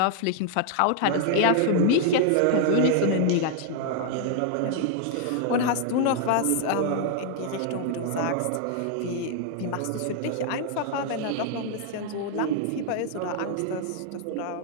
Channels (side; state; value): both; different; correlation 0.00